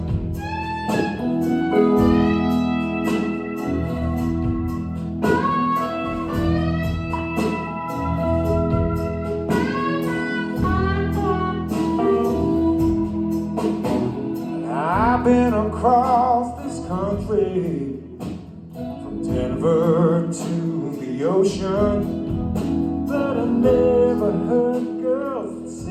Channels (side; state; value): both; identical; correlation 1.00